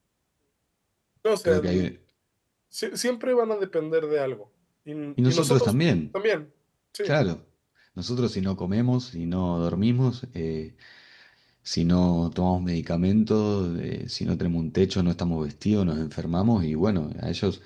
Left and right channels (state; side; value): identical; both; correlation 1.00